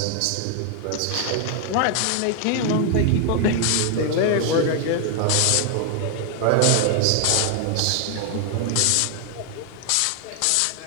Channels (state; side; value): different; both; correlation 0.00